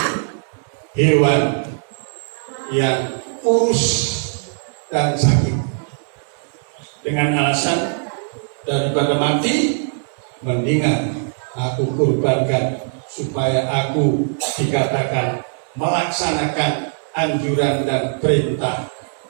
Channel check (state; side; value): silent; left; digital silence